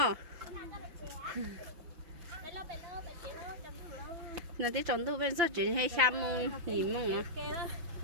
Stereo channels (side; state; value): left; late; 5.9 ms